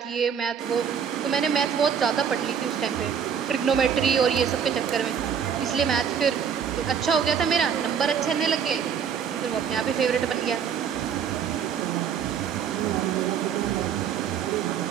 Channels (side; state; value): left; quieter; 7.5 dB